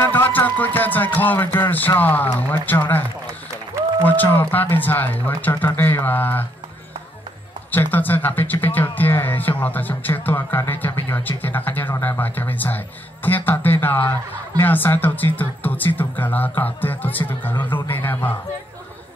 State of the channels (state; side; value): normal; both; correlation 0.72